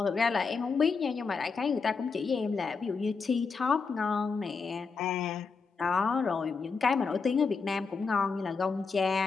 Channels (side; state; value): right; quieter; 4.9 dB